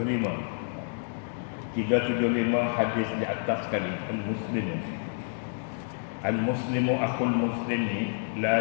375 hadis di atas sekali. Al-muslimu akhul muslimi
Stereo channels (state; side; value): silent; right; digital silence